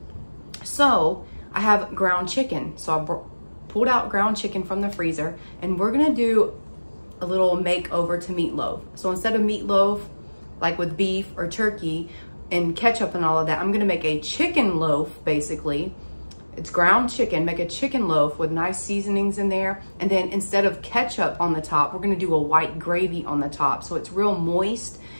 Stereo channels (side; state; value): both; inverted; correlation -1.00